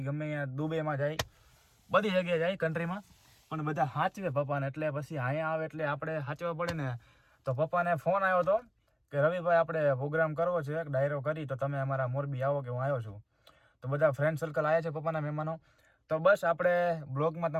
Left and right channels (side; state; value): both; identical; correlation 1.00